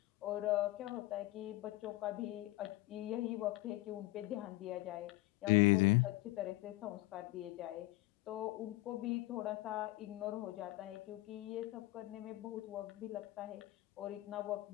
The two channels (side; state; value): right; quieter; 18.7 dB